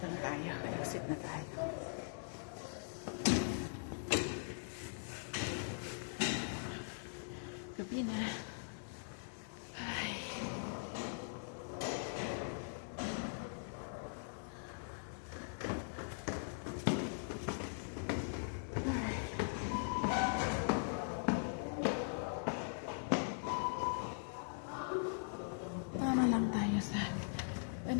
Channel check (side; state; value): right; silent; digital silence